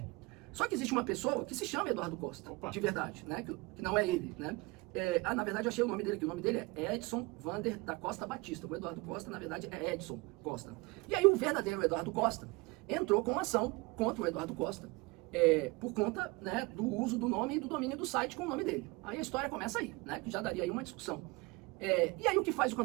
Só que existe uma pessoa que se chama Eduardo Costa, Opa. de verdade, né, que não é ele, né. Na verdade, eu achei o nome dele aqui. O nome dele é Edson Vander da Costa Batista. O Eduardo Costa, na verdade, é Edson Costa. E aí o verdadeiro Eduardo Costa entrou com uma ação contra o Eduardo Costa, por conta, né, do uso do nome e do domínio do site com o nome dele. Aí a história começa aí, né, que já daria aí uma discussão. E aí o que faz o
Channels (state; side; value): quieter; left; 24.7 dB